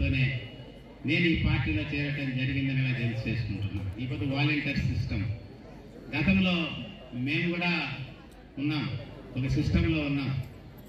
నేను ఈ పార్టీలో చేరటం జరిగిందని తెలియజేసుకుంటున్నాను. ఇప్పుడు వాలంటీర్ సిస్టమ్ గతంలో మేము కూడా ఉన్నాం, ఒక సిస్టంలో ఉన్నాం.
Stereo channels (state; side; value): identical; both; correlation 1.00